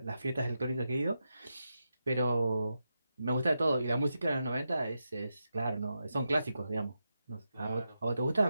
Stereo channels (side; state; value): both; inverted; correlation -0.87